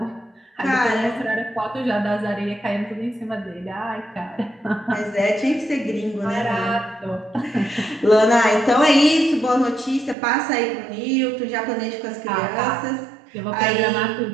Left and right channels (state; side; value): drops out; left; at 10.2 s